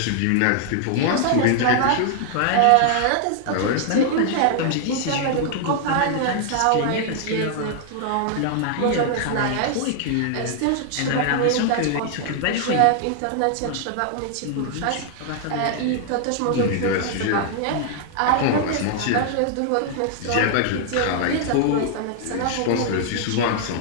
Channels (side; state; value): both; different; correlation 0.00